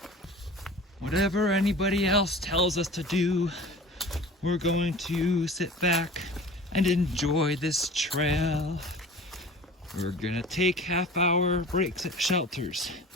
Whatever anybody else tells us to do, we're going to sit back and enjoy this trail. We're gonna take half-hour breaks at shelters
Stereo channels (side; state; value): both; normal; correlation 0.40